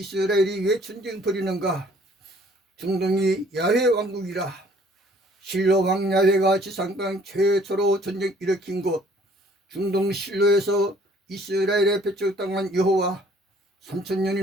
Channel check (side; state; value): both; normal; correlation 0.58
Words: 왜 전쟁 벌이는가? 중동이 야훼 왕국이라. 실로 왕 야훼가 지상 땅 최초로 전쟁 일으킨 곳, 중동 실로에서 이스라엘에 배척당한 여호와,